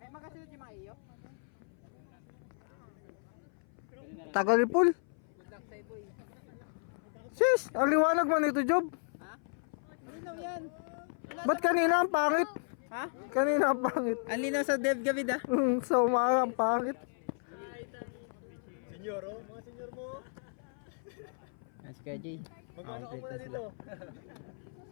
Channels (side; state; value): right; silent; 55 dB below the other